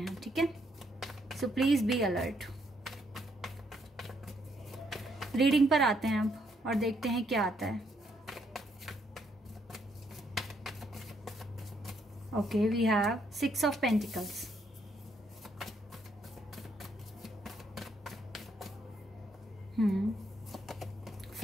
ठीक है, so please be alert. Reading पर आते हैं अब और देखते हैं क्या आता है। Okay, we have 6 of Pentacles.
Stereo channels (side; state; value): both; normal; correlation 0.72